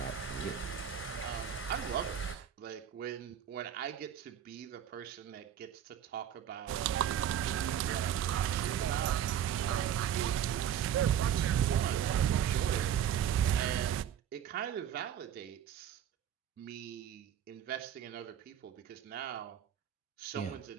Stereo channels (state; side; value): quieter; left; 9.7 dB